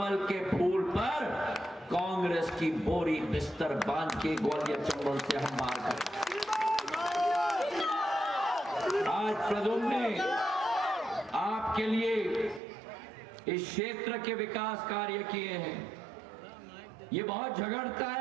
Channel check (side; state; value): left; drops out; at 12.6 s